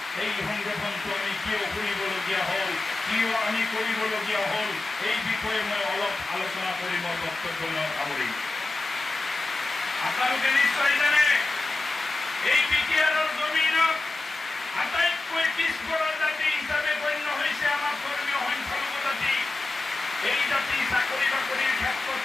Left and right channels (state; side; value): quieter; right; 3.2 dB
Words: এই সংগঠনটো আমি কিয় কৰিবলগীয়া হ'ল কিয় আমি কৰিবলগীয়া হ'ল এই বিষয়ে মই অলপ আলোচনা কৰি মোৰ বক্তব্য সামৰিম। আপোনালোকে নিশ্চয় জানে এই বিটিআৰৰ জমিনত আটাইতকৈ পিছপৰা জাতি হিচাপে গণ্য হৈছে আমাৰ ধৰ্মীয় সংখ্যালঘু জাতি। এই জাতি চাকৰি বাকৰিৰ ক্ষেত্ৰত